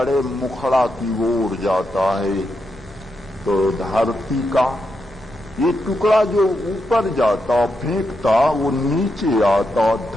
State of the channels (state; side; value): noise; right; rumble, 20 dB below the sound